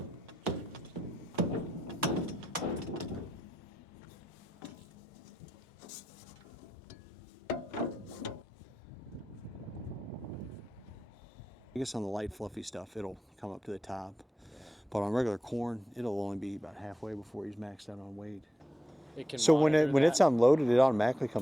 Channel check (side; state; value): both; normal; correlation 0.88